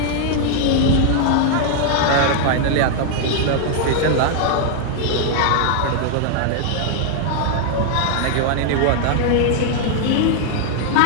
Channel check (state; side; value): different; both; correlation 0.00